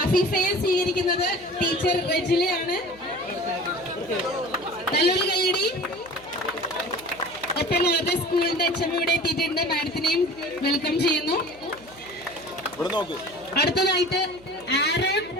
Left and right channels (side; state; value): right; noise; hum, 24 dB below the sound